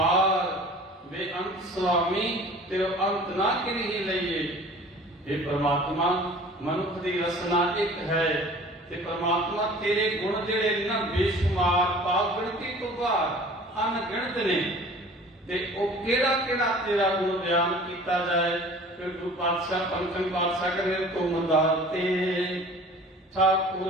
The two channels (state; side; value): normal; both; correlation 0.46